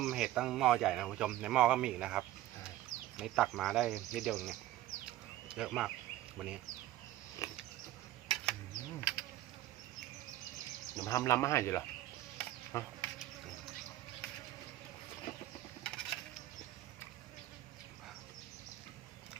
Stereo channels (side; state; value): left; quieter; 14.7 dB